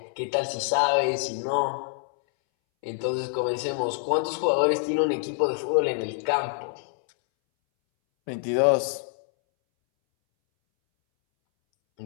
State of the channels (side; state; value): right; silent; 61 dB below the other